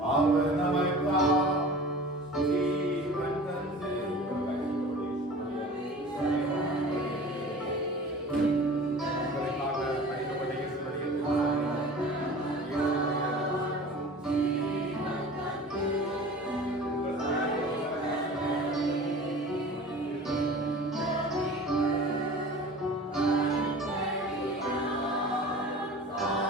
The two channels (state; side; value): normal; both; correlation 0.40